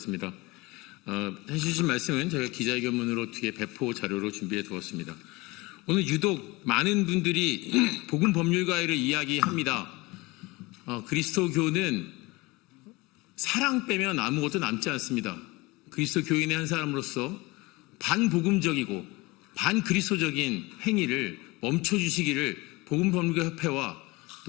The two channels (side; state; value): right; quieter; 23.2 dB